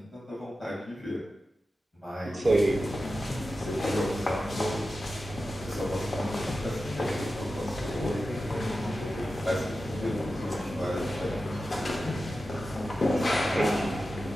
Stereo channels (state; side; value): normal; both; correlation 0.92